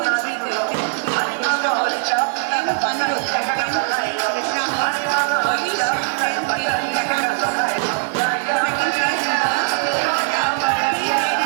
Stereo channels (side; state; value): left; silent; 60 dB below the other